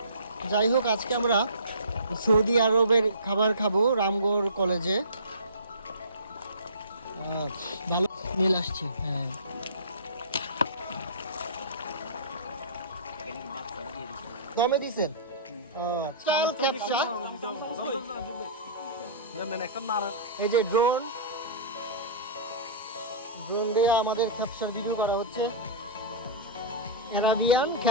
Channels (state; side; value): inverted; both; correlation -0.32